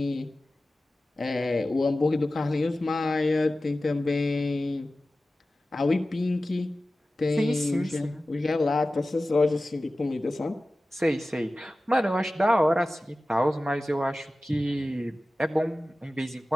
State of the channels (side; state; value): both; normal; correlation 0.96